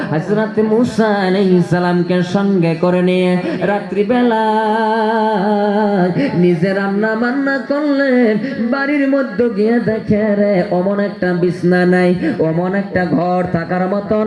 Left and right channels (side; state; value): both; identical; correlation 1.00